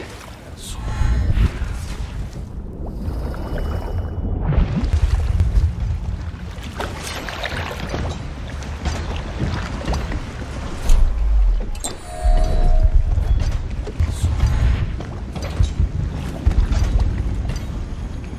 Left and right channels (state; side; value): identical; both; correlation 1.00